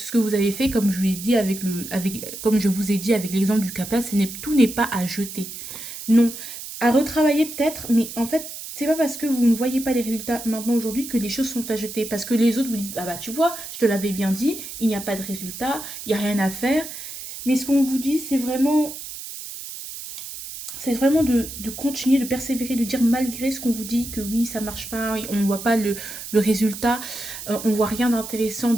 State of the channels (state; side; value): noise; right; hiss, 10 dB below the sound